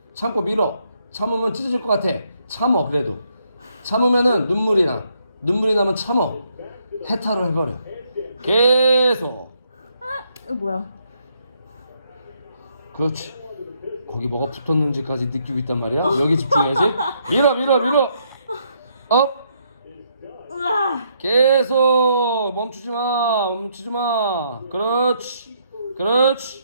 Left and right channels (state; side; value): inverted; both; correlation -0.73